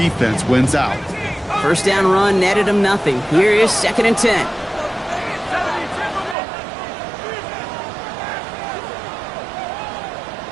wins out. 1st down run netted him nothing. Here is 2nd and 10.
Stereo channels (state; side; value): drops out; left; at 6.4 s